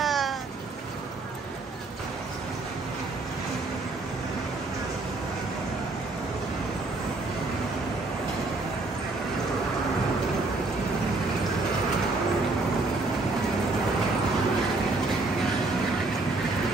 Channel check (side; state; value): left; quieter; 3.4 dB